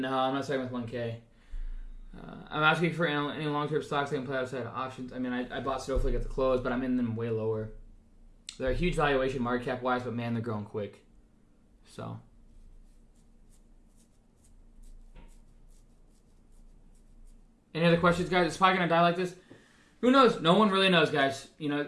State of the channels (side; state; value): both; identical; correlation 1.00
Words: I'm not starting with 1K. I'm asking for any long-term stocks I can play outside of options. I mean, I bought Snowflake at the close, but I'm in them way lower. They're a huge valuation market cap-wise, but man, they're growing quick. So... Any other questions, guys? Is SPY going to die like this? Who knows? No one really knows, guys.